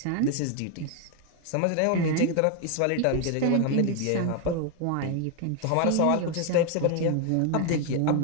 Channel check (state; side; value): different; both; correlation 0.01